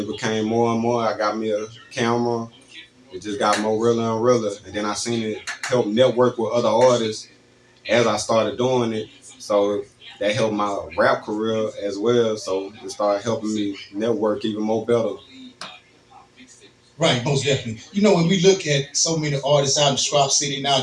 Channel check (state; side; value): identical; both; correlation 1.00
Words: became more and more. I got me a camera. It just got more realer and realer. And then I seen it help network with other artists as I started doing it. So that helped my rap career as well. So it started helping me network even more better. Right, most definitely. When we look at so many artists out in Sprout City